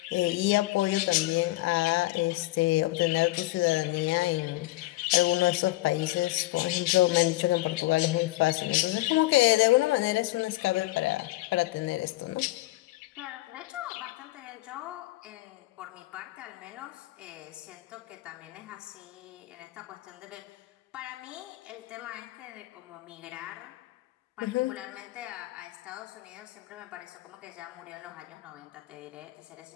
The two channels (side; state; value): right; quieter; 18.8 dB